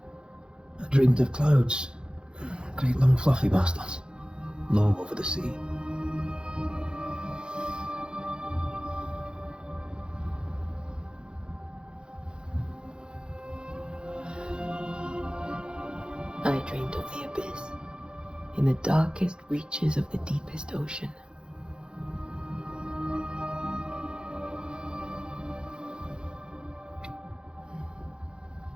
I dreamed of clouds. Great long fluffy bastards. Low over the sea. I dreamed of the abyss, in the darkest reaches of the deepest ocean.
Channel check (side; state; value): left; late; 0.049 ms